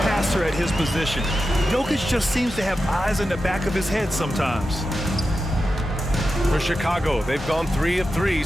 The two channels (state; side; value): normal; both; correlation 0.91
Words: passer at his position. Jokic just seems to have eyes in the back of his head sometimes. For Chicago, they've gone 3 of 3